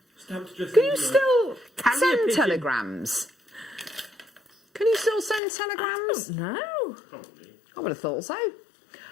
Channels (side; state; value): right; drops out; at 5.4 s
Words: Can you still send telegrams? Can you still send telegrams? No. I would have thought so.